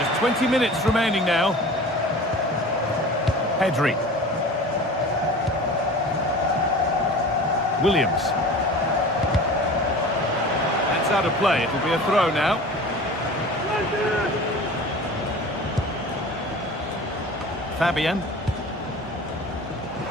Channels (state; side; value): normal; both; correlation 0.39